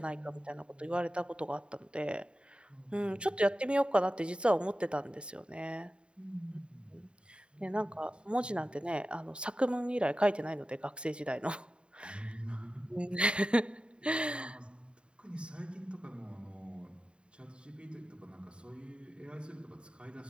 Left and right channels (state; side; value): late; left; 0.053 ms